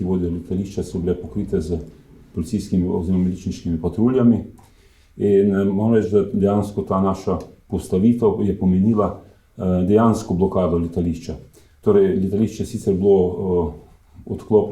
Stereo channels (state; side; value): identical; both; correlation 1.00